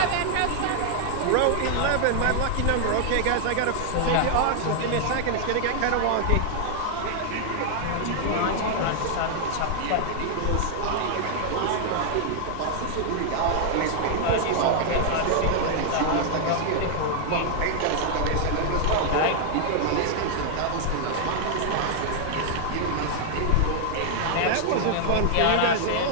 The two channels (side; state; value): both; different; correlation 0.00